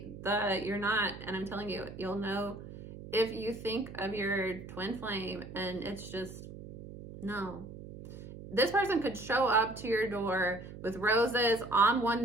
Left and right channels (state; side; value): noise; right; hum, 13 dB below the sound